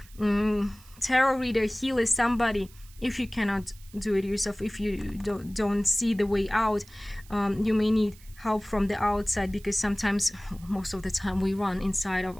tarot reader, healer, somebody. If you cannot do it yourself, if you don't see the way out, you may need help from the outside, because sometimes, most of the time, we run inside of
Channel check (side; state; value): right; noise; hiss, 24 dB below the sound